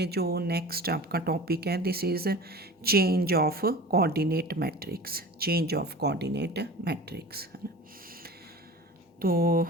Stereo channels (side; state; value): both; normal; correlation 0.37